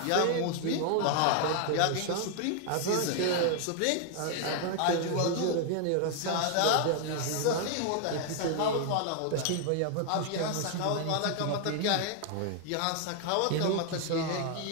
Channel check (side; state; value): both; different; correlation 0.00